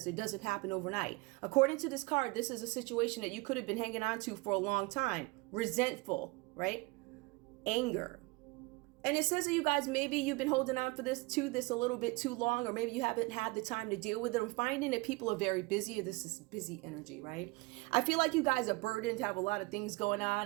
It doesn't happen overnight. According to this card, this is a situation that you could have been hanging on to for a long time. Resentful, right? Anger. And it says that you guys, maybe you've been holding on to this a little bit too long, or maybe you haven't had the time to deal with it. I'm finding that people are very busy. This is busy energy, right? I feel like you guys are burdened, have a lot of things going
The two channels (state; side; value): quieter; left; 24.9 dB